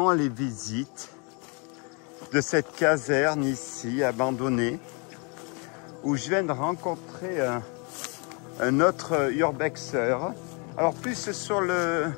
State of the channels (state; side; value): quieter; right; 33.4 dB